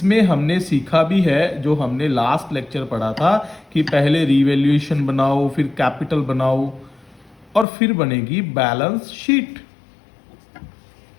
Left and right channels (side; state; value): right; drops out; at 7.7 s